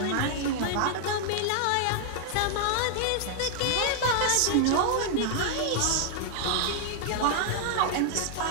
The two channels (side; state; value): both; different; correlation 0.00